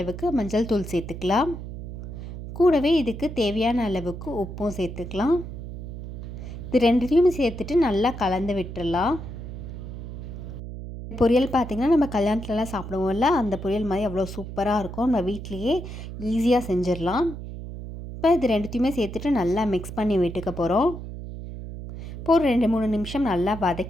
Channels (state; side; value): noise; right; hum, 9 dB below the sound